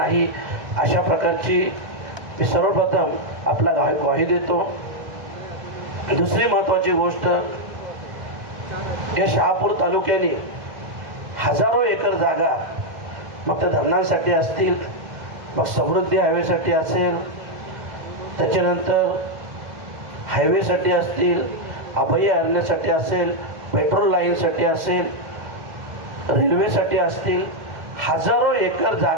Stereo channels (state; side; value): late; left; 2.1 ms